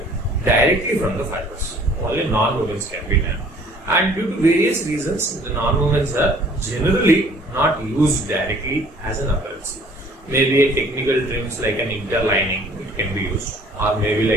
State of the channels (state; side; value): normal; both; correlation 0.54